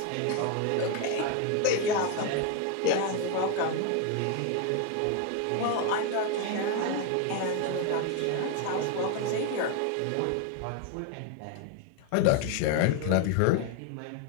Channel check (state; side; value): different; both; correlation 0.01